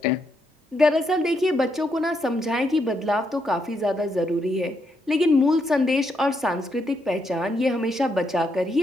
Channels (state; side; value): normal; both; correlation 0.78